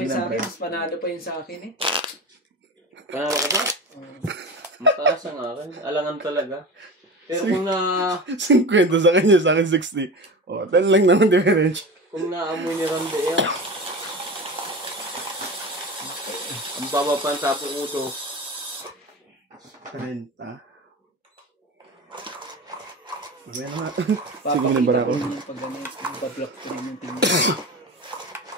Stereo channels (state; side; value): normal; both; correlation 0.30